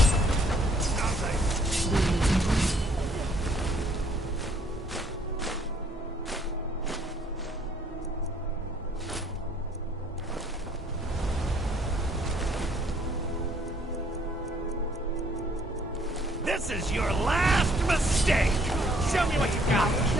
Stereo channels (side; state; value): both; normal; correlation 0.63